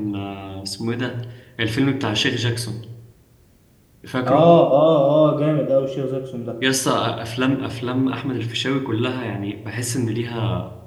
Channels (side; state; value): both; identical; correlation 1.00